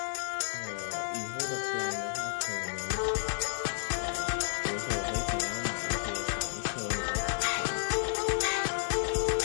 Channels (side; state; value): right; silent; digital silence